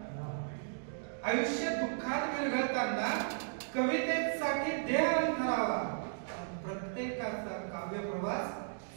आयुष्य दुःखात विरघळताना कवितेसाठी देहन करावा. प्रत्येकाचा काव्य प्रवास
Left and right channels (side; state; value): left; silent; digital silence